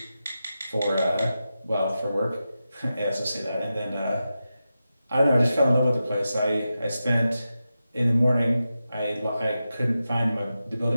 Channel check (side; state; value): both; inverted; correlation -0.91